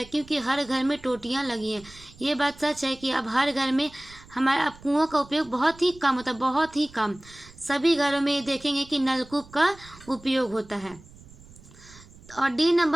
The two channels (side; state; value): right; noise; rumble, 22 dB below the sound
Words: क्योंकि हर घर में टोटियाँ लगी हैं। ये बात सच है कि अब हर घर में हमारे अब कुओं का उपयोग बहुत ही कम होता है, बहुत ही कम। सभी घरों में देखेंगे कि नलकूप का उपयोग होता है। और डी